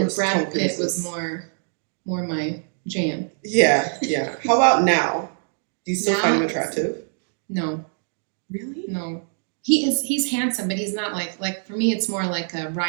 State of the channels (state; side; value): silent; left; 60 dB below the other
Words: Brad Pitt was more my jam. Yeah. How about now? Do you still Now, find him attractive? No. Really? No. He's handsome, but he's not like for me it's more like a